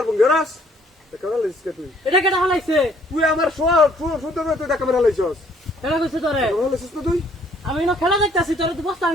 বঙ্গরাস দেখা মার হালে তুই এটা কেটা হালাইছে তুই আমার সুন্দর তুই দেখা মার হালাইছস এটা কইছে তোরে হালাইছস তো তুই আমি না খেলা দেখতাছি তোরে তো বস্তা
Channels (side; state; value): both; normal; correlation 0.62